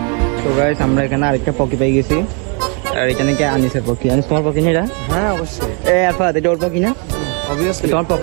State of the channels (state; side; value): quieter; left; 36.1 dB